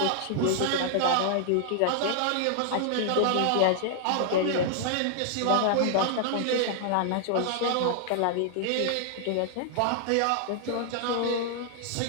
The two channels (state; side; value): different; both; correlation 0.00